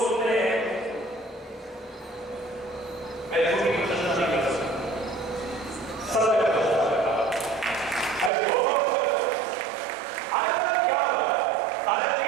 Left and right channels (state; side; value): drops out; left; at 8.3 s